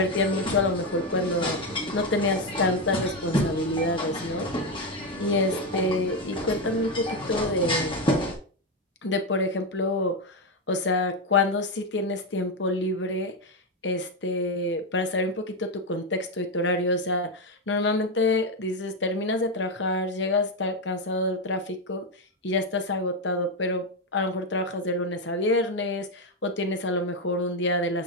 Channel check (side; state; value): both; normal; correlation 0.08